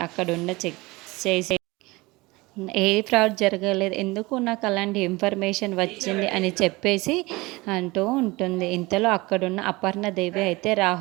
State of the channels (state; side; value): quieter; left; 22.4 dB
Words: అక్కడున్న చెక్ చేసే ఏ ఫ్రాడ్ జరగలేదు, ఎందుకు నాకు అలాంటి ఇన్ఫర్మేషన్ వచ్చింది అని చెప్పేసి అంటూ ఉంటుంది. ఇంతలో అక్కడున్న అపర్ణదేవి అయితే